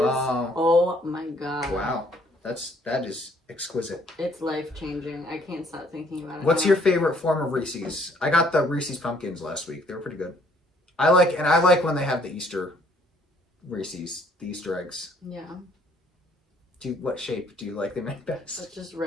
Oh my god. Wow. That is exquisite. It's life changing. I can't stop thinking about it. What's your favorite form of Reese's? I got the Reese's pumpkins last week. They were pretty good. I like when they have the Easter Reese's, the Easter eggs. Yeah. What shape do you like them in best? It's just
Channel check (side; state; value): both; normal; correlation 0.63